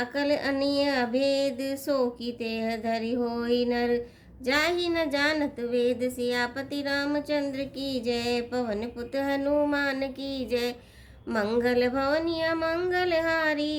अनीय अभेद, सो की तेह धरि होई नर जाहि न जानत वेद। सियापति रामचंद्र की जय, पवन पुत हनुमान की जय। मंगल भवनिया मंगल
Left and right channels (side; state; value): both; identical; correlation 1.00